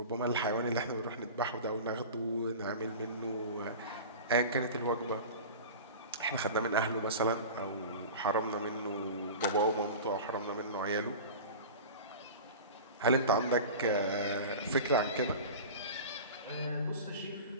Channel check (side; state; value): both; inverted; correlation -0.33